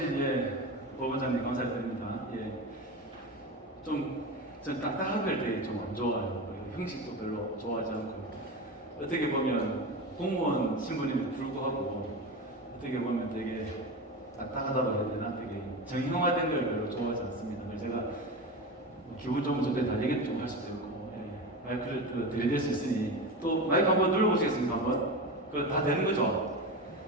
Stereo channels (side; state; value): both; normal; correlation 0.23